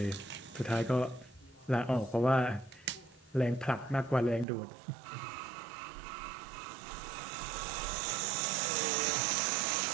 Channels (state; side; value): drops out; left; at 4.5 s